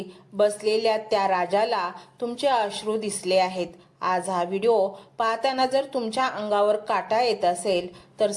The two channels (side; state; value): both; identical; correlation 1.00